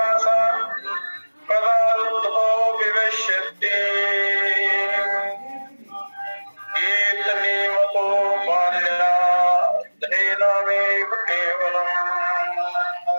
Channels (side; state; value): both; inverted; correlation -1.00